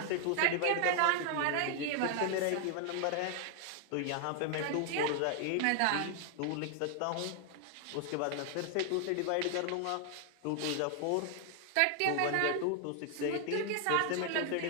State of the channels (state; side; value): different; both; correlation 0.00